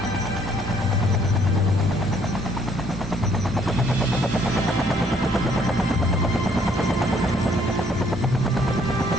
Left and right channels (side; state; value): both; normal; correlation 0.65